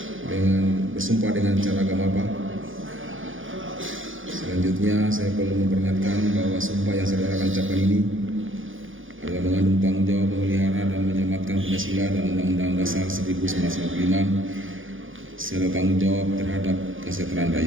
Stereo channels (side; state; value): left; late; 0.58 ms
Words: dengan bersumpah dengan cara agama apa? Selanjutnya saya perlu memperingatkan bahwa sumpah yang saudara akan ucapkan ini adalah mengandung tanggung jawab memelihara dan menyematkan Pancasila dan Undang-Undang Dasar 1945 serta tanggung jawab terhadap kesejahteraan